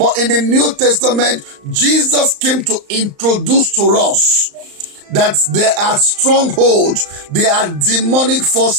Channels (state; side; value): late; left; 35 ms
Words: in the New Testament, Jesus came to introduce to us that there are strongholds, there are demonic